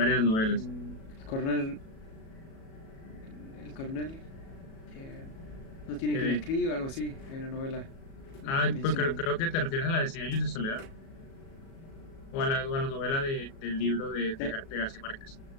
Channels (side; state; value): right; late; 37 ms